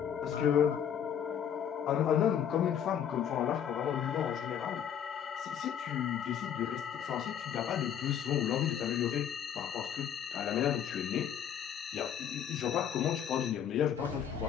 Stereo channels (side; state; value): right; quieter; 8.9 dB